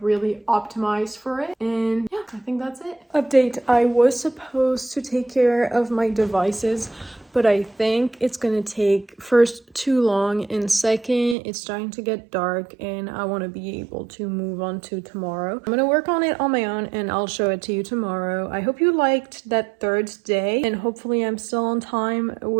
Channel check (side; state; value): left; drops out; at 11.4 s